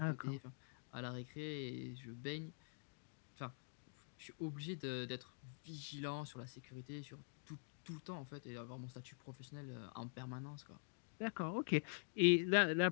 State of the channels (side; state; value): right; silent; digital silence